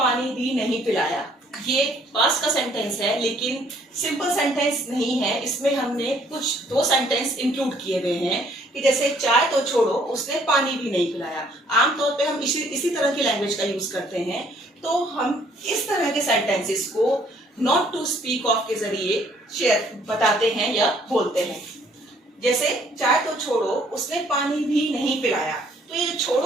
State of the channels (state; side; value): normal; both; correlation 0.62